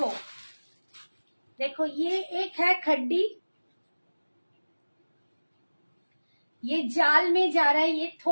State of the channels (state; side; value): inverted; both; correlation -1.00